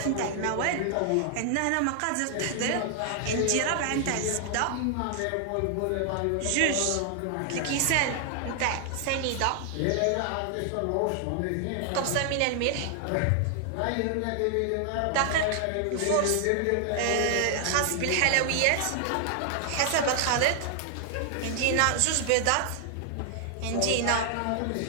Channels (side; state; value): both; different; correlation 0.00